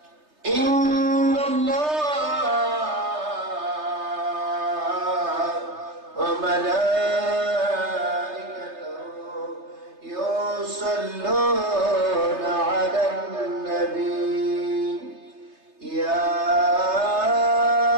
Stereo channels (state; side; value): late; left; 3.3 ms